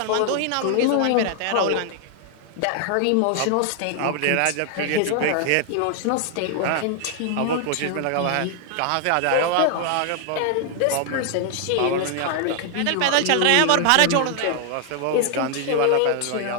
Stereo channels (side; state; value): both; different; correlation 0.00